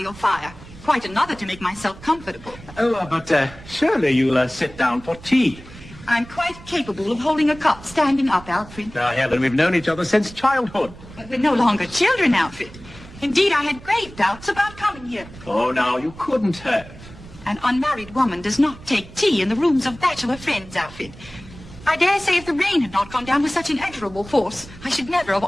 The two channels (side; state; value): right; noise; rumble, 18 dB below the sound